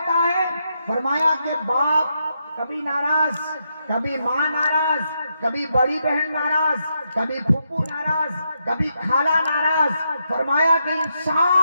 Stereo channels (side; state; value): both; inverted; correlation -0.82